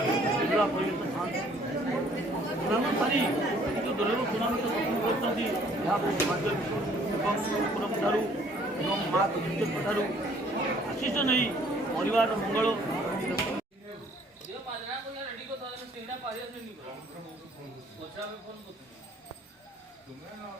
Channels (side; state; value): both; normal; correlation 0.59